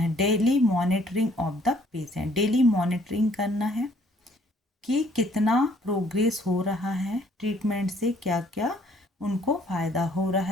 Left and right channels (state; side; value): normal; both; correlation 0.62